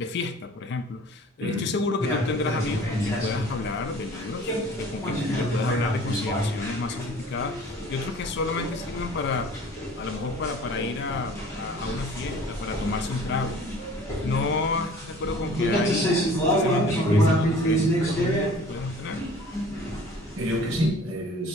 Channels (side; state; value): both; normal; correlation 0.48